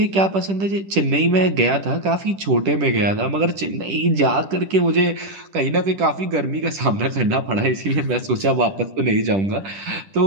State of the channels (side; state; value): left; late; 10 ms